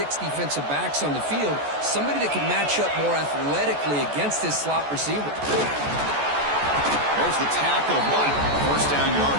defensive backs on the field, somebody that can match up more athletically against this slot receiver. There's the tackle, but 1st down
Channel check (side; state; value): left; late; 14 ms